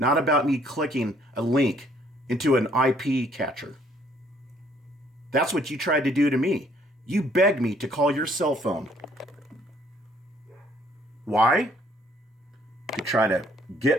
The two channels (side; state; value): both; normal; correlation 0.63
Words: about me clicking a link into an IP catcher. That's what you tried to do to me. You begged me to call your cell phone. Why? To try to